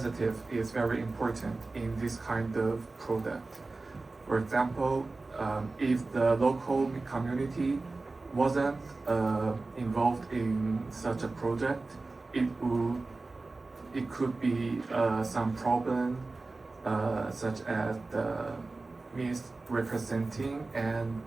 is very important in this kind of product. For example, if the local community wasn't involved in such a project, it could be some problem such as the misrepresenting and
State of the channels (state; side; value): quieter; left; 3.5 dB